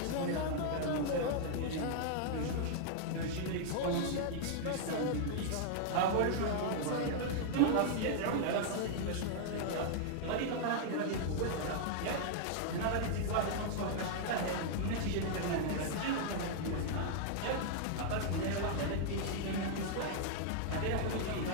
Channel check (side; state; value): both; different; correlation -0.01